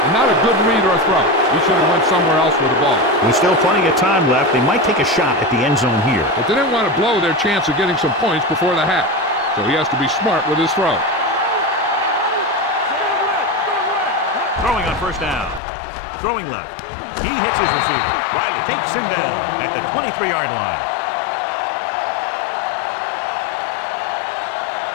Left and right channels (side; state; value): right; drops out; at 15.6 s